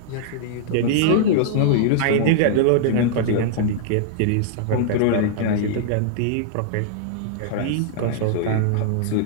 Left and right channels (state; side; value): different; both; correlation -0.01